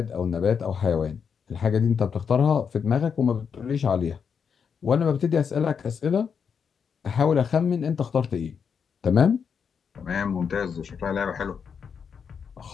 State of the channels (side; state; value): right; quieter; 6.7 dB